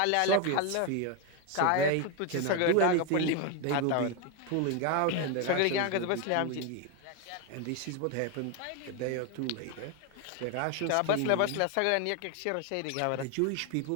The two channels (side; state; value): both; different; correlation 0.01